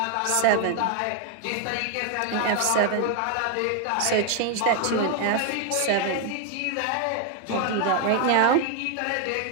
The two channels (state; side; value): different; both; correlation 0.00